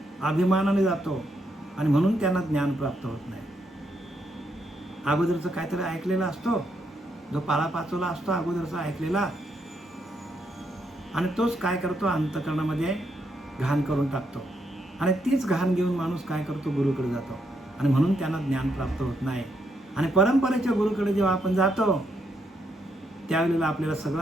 अभिमानाने जातो, आणि म्हणून त्यांना ज्ञान प्राप्त होत नाही. अगोदरचं काहीतरी ऐकलेला असतो, जो पाळापाचोला असतो अगोदरचा ऐकलेला, आणि तोच काय करतो? अंतःकरणामध्ये घाण करून टाकतो. आणि तीच घाण घेऊन माणूस काय करतो? गुरुकडे जातो. आणि म्हणून त्यांना ज्ञान प्राप्त होत नाही. आणि परंपरेच्या गुरुकडे जेव्हा आपण जातो त्यावेळेला आपल्याला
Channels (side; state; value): both; normal; correlation 0.77